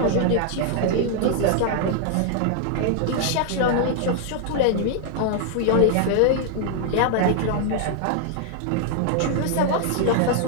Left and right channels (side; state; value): both; different; correlation 0.00